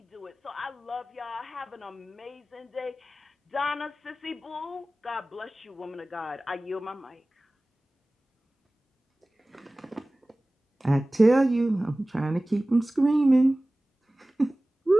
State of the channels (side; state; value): both; normal; correlation 0.97